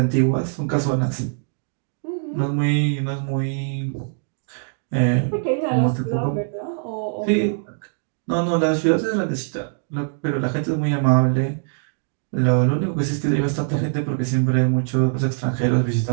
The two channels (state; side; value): silent; left; digital silence